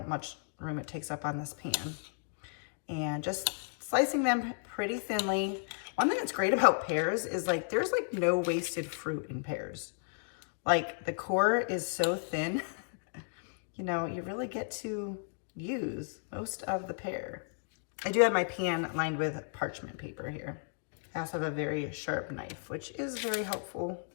room it takes up on this pan. And just slicing them pretty thinly. One thing that's great about pears is like, there's like no wasted fruit in pears. Like the core is so thin, you really get to use most of the pear. I do have my pan lined with parchment paper here. I also have a very sharp knife, which is very helpful.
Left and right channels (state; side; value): silent; right; digital silence